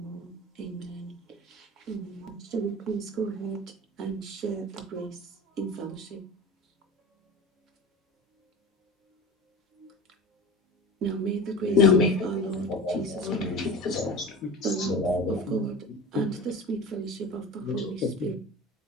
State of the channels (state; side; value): normal; both; correlation 0.34